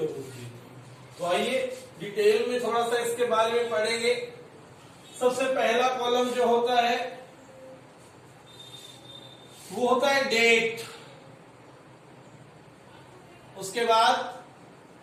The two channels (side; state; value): both; identical; correlation 1.00